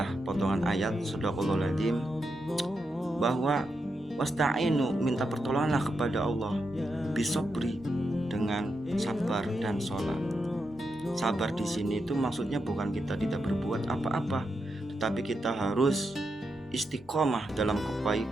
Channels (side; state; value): both; normal; correlation 0.85